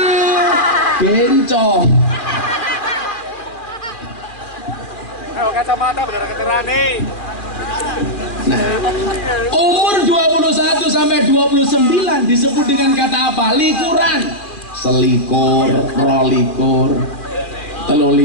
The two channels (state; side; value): late; right; 2.4 ms